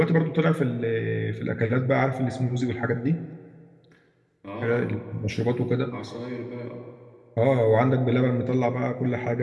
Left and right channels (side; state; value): both; identical; correlation 1.00